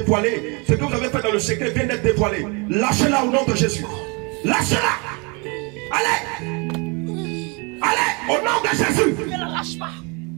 Ce que vous avez fait dans le secret vient d'être dévoilé. Lâchez-la au nom de Jésus. Lâchez-la. Allez. Allez, au nom de Jésus. Ne la lâche pas.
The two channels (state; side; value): quieter; left; 31.1 dB